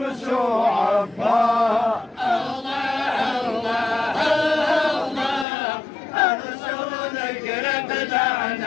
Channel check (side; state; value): right; drops out; at 5.5 s